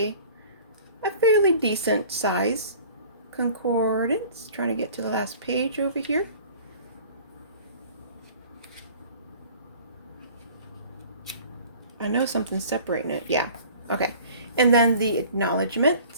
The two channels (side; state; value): both; inverted; correlation -0.47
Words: fairly decent size concordance. Trying to get to the last page over here. I know something's separating it. Yeah. Okay. And then the